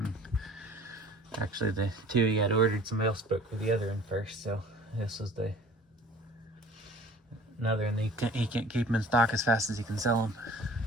Actually, the two he had ordered, somebody else spoke for the other one first, so this was another, and he can't keep them in stock as fast as he can sell them.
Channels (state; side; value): normal; both; correlation 0.47